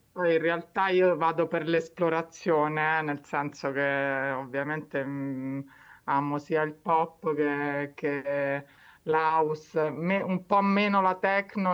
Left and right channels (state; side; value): identical; both; correlation 1.00